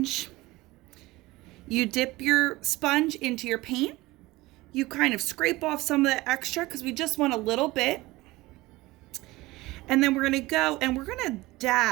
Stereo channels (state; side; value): quieter; left; 19.9 dB